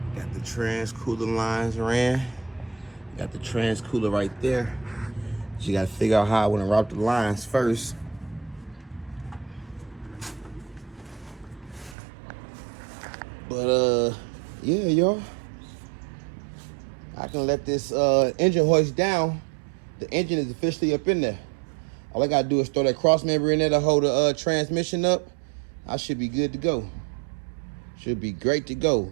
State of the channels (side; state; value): left; drops out; at 12.0 s